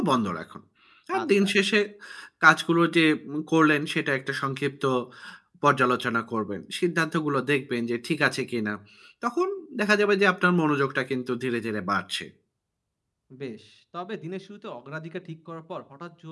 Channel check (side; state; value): both; identical; correlation 1.00